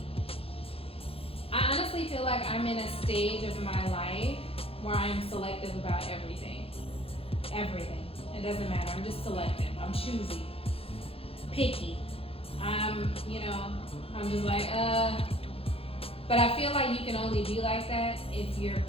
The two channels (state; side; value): late; right; 0.27 ms